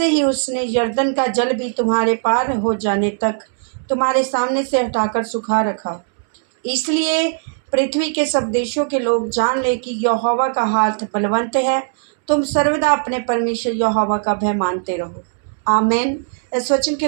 ही उसने यरदन का जल भी तुम्हारे पार हो जाने तक तुम्हारे सामने से हटाकर सुखा रखा। इसलिए पृथ्वी के सब देशों के लोग जान ले कि यहोवा का हाथ बलवंत है। तुम सर्वदा अपने परमेश्वर यहोवा का भय मानते रहो। आमीन। इस वचन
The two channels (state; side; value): silent; left; 67 dB below the other